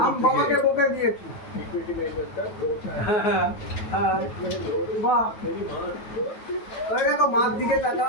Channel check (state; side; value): late; right; 9.3 ms